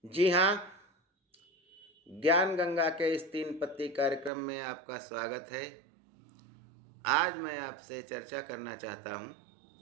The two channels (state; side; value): drops out; left; at 4.3 s